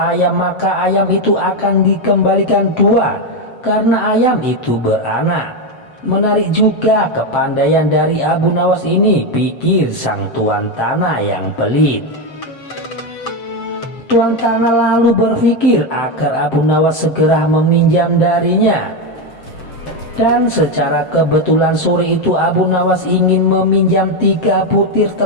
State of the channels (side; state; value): right; late; 7.7 ms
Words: maka ayam itu akan dikembalikan 2 karena ayam itu beranak. Menarik juga kepandaian dari Abu Nawas ini, pikir sang tuan tanah yang pelit. Tuan tanah lalu berpikir agar Abu Nawas segera meminjam darinya. Dan secara kebetulan sore itu Abu Nawas ingin meminjam 3 butir